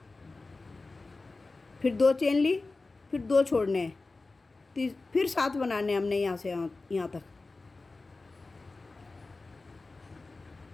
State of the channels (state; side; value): quieter; right; 3.5 dB